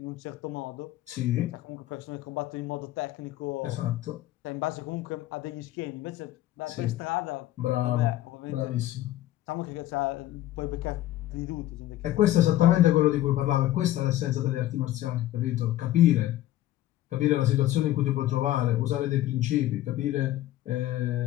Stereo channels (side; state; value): right; quieter; 14.3 dB